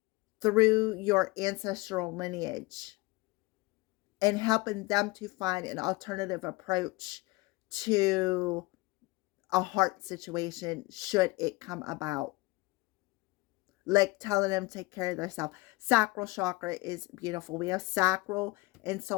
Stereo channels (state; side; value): quieter; right; 22.8 dB